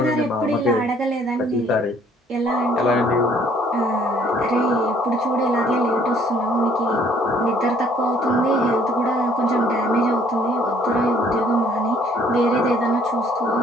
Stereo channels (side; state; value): both; normal; correlation 0.61